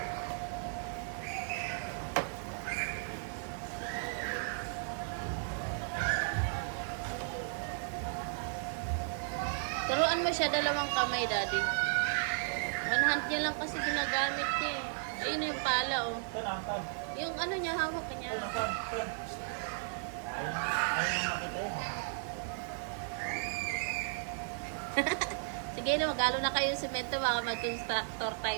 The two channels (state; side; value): silent; left; digital silence